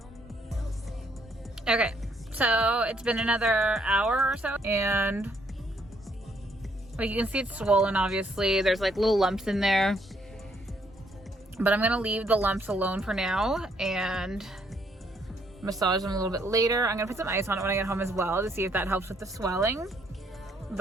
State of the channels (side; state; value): both; normal; correlation 0.70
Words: Okay, so it's been another hour or so, and like you can see it's swollen, obviously. There's like little lumps in there, but I'm gonna leave the lumps alone for now and massage them a little bit later. I'm gonna put some ice on it when I get home as well to see if that helps with the swelling.